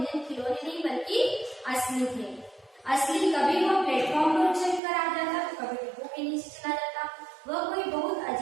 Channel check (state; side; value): drops out; left; at 4.8 s